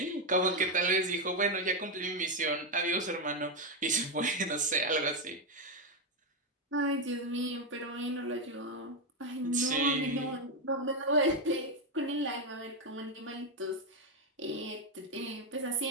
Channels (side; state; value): both; normal; correlation 0.06